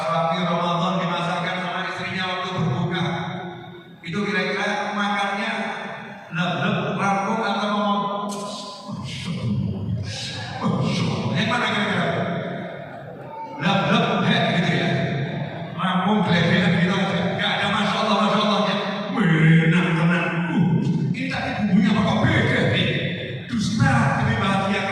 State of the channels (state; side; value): identical; both; correlation 1.00